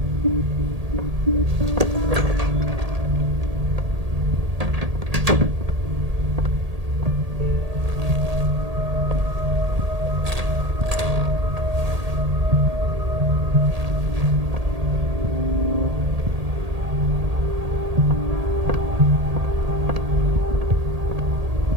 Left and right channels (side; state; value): left; late; 1.8 ms